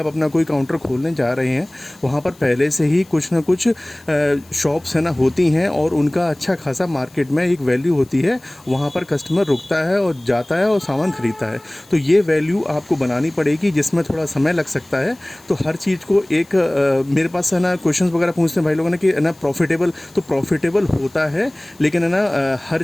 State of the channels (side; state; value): left; noise; hiss, 27 dB below the sound